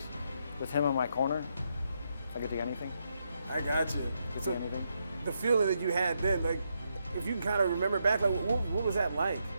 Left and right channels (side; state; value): both; inverted; correlation -0.80